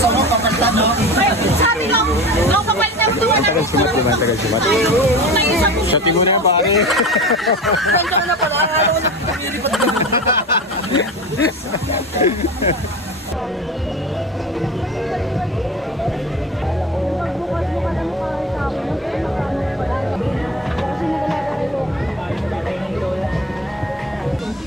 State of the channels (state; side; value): normal; both; correlation 0.32